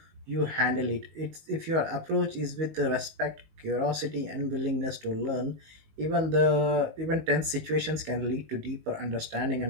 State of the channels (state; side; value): late; left; 19 ms